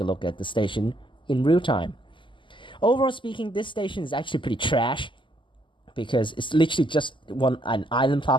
look at the station in real time. Overall speaking, this station is actually pretty trash, because it's literally just an island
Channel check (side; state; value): right; late; 0.24 ms